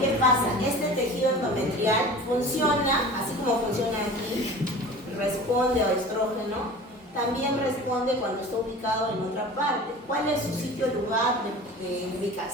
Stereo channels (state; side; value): normal; both; correlation 0.39